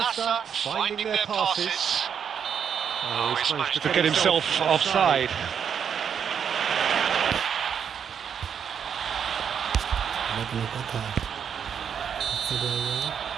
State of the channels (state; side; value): quieter; left; 7.6 dB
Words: finding their passes. Oh, he's managed to get himself offside.